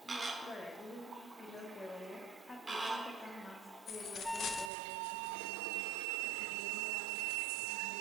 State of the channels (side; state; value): left; drops out; at 4.7 s